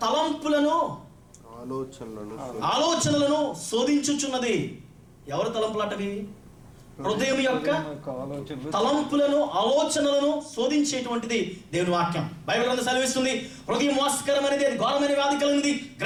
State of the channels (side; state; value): both; identical; correlation 1.00